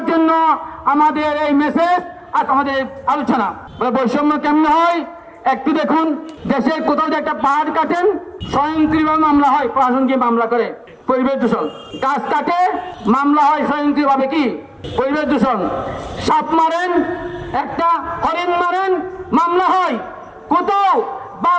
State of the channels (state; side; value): identical; both; correlation 1.00